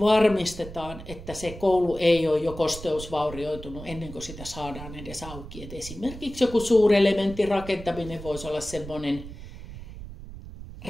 että se koulu ei ole jo kosteusvaurioitunut ennen kuin sitä saadaan edes auki. Et esimerkiksi joku suurelementin rakentaminen voisi olla semmoinen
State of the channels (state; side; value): noise; right; rumble, 13 dB below the sound